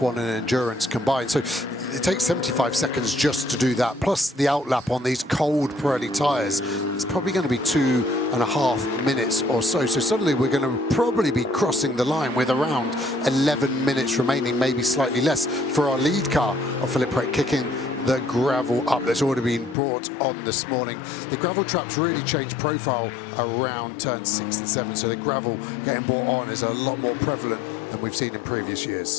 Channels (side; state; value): right; drops out; at 19.8 s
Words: and endurance combined. So it takes 75 seconds just to do that. Plus the outlap on these cold Pirelli tyres. It's probably going to be 2.5 minutes or so. So suddenly we're going to probably be crossing the line with around 11 minutes remaining, maybe slightly less, for our lead car of Philippe Pret kicking the gravel up that's already been brought on this morning. The gravel traps really change profile around turns 6 and 7, so the gravel getting brought on is a lot more prevalent than we've seen in previous